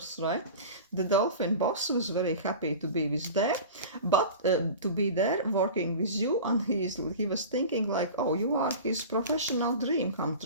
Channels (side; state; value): both; inverted; correlation -0.35